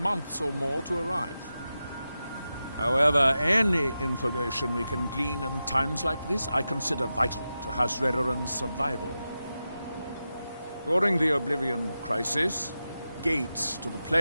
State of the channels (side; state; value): both; inverted; correlation -0.91